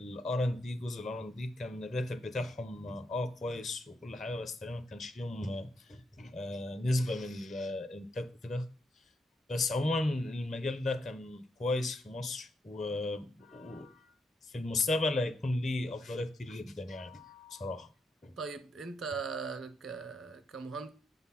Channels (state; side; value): normal; both; correlation 0.81